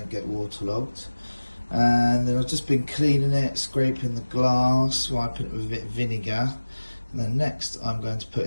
get waterlogged, and then I've just been cleaning it, scraping the glass, wiping it with a bit of vinegar, and then next I'm going to put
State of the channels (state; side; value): inverted; both; correlation -1.00